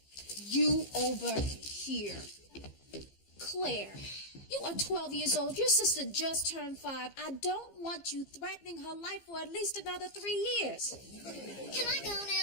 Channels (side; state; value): right; late; 15 ms